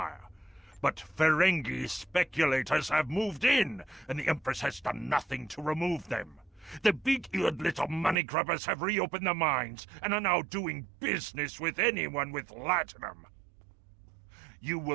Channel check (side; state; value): left; drops out; at 8.2 s